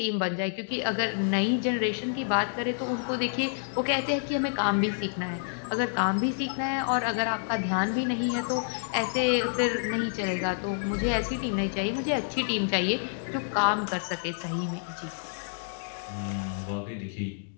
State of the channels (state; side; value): silent; right; digital silence